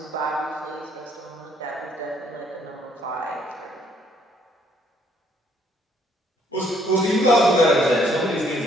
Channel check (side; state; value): both; normal; correlation 0.66